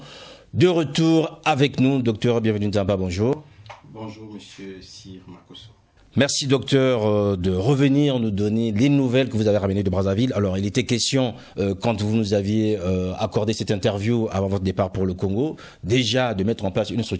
de retour avec nous. Docteur Bienvenu Nzamba, bonjour. Bonjour, monsieur Sir Makosso. Merci docteur de revenir nous donner les nouvelles que vous avez ramenées de Brazzaville. Alors il était question, quand vous nous aviez accordé cette interview avant votre départ pour le Congo, déjà de mettre en place une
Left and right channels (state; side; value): identical; both; correlation 1.00